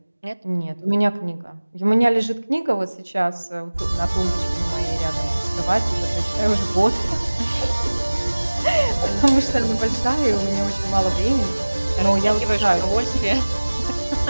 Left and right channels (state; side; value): inverted; both; correlation -1.00